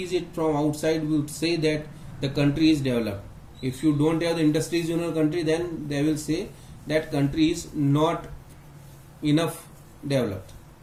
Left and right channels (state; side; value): identical; both; correlation 1.00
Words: it from outside will say that the country is developed. If you don't have the industries in your country, then they will say that country is not enough developed.